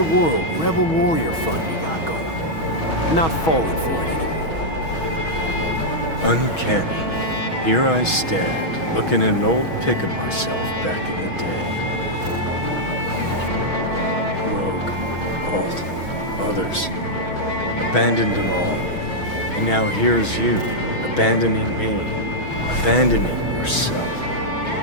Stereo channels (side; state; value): right; late; 6.2 ms